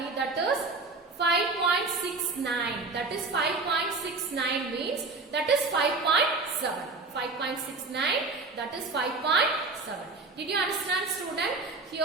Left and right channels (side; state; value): left; quieter; 3.7 dB